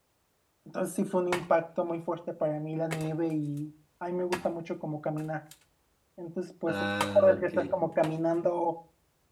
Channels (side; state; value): both; identical; correlation 1.00